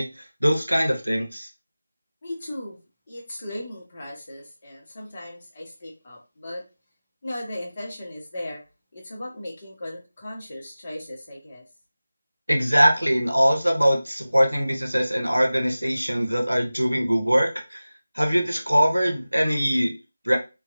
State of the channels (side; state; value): both; inverted; correlation -0.98